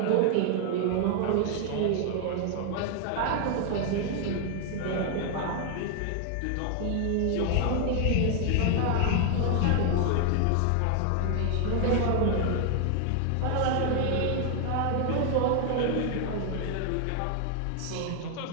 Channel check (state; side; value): different; both; correlation 0.00